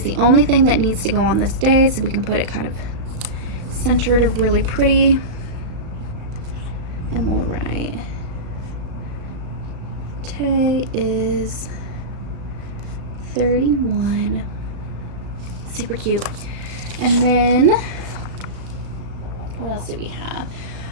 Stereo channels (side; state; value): left; late; 35 ms